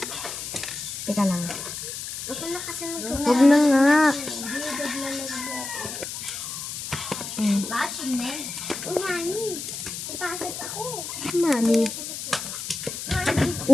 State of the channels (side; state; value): left; noise; hiss, 7 dB below the sound